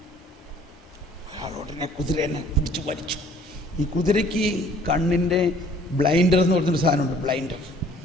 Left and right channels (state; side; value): normal; both; correlation 0.56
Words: അയാൾ ഉടനെ കുതിരനെ പിടിച്ചു വലിച്ചു. ഈ കുതിരയ്ക്ക് കണ്ണിൻ്റെ ബ്ലൈൻഡർ എന്ന് പറഞ്ഞൊരു സാധനമുണ്ട്, ബ്ലൈൻഡർ.